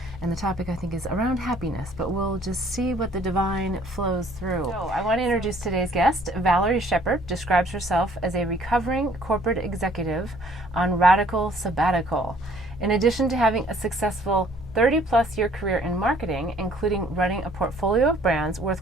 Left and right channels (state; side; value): noise; right; hum, 20 dB below the sound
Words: and the topic I think is around happiness, but we'll just see what the divine flows through. So I want to introduce today's guest. Valarie Sheppard describes herself as a recovering corporate executive on radical sabbatical. In addition to having a successful 30-plus year career in marketing, including running a portfolio of brands